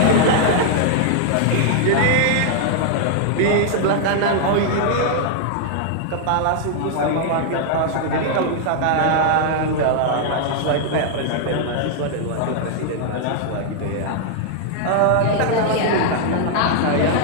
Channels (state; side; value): different; both; correlation -0.01